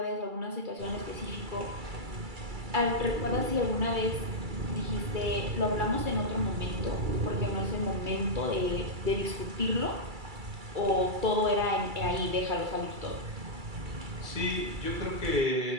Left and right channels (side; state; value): left; late; 2.3 ms